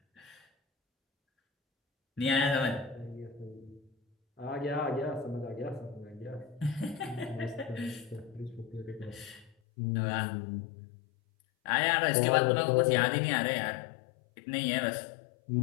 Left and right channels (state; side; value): drops out; right; at 9.5 s